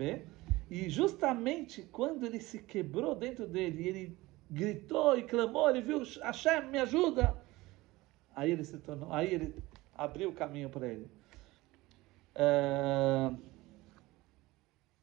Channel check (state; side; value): quieter; left; 19.9 dB